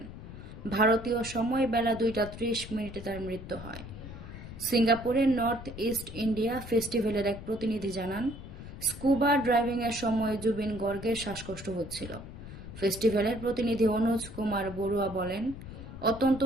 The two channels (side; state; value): left; noise; rumble, 12 dB below the sound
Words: ভারতীয় সময় বেলা 2:30 তার মৃত্যু হয়। সিঙ্গাপুরের নর্থ ইস্ট ইন্ডিয়া ফেস্টিভ্যালের এক প্রতিনিধি জানান, স্কুবা ড্রাইভিংয়ের সময় জুবিন গর্গের শ্বাসকষ্ট হচ্ছিল। ফেস্টিভ্যালের প্রতিনিধি অনুজ কুমার বড়ুয়া বলেন, অত্যন্ত